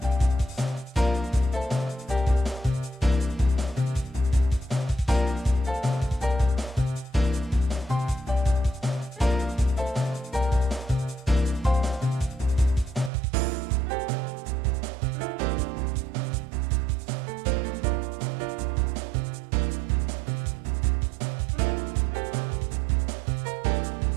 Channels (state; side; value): drops out; left; at 13.1 s